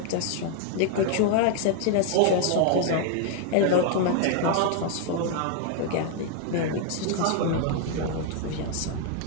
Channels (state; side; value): different; both; correlation 0.00